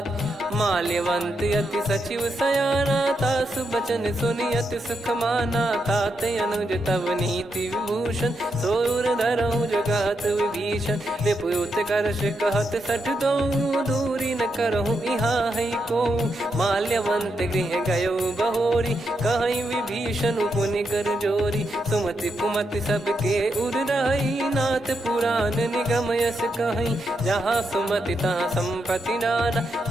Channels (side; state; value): both; normal; correlation 0.83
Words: माल्यवंत अति सचिव सयाना, तासु बचन सुनि अति सुख माना। तात अनुज तव नीति विभूषण, सोर धरहु जगत विभीषण। विपुत करश कहत सठ दो, दूरी न करहु यहाँ है को। माल्यवंत गृह गयो बहोरी, कहीं विभीषण पुनि कर जोरी। सुमति कुमति सबके उर रही, नाथ पुराण निगम यस कहीं। जहाँ सुमति तहाँ संपत्ति नाना,